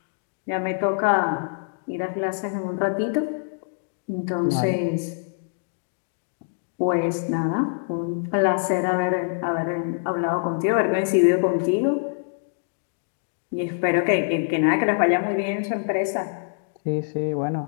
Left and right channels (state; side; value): silent; right; digital silence